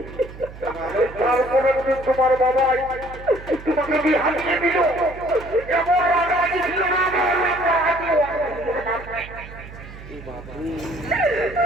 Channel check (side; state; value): right; noise; hum, 15 dB below the sound